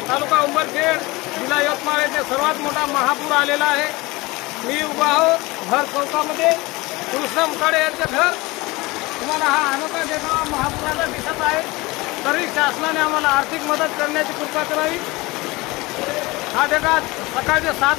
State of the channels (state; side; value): quieter; right; 22.6 dB